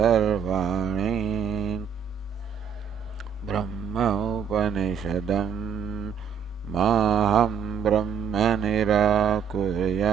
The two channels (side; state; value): left; quieter; 7.4 dB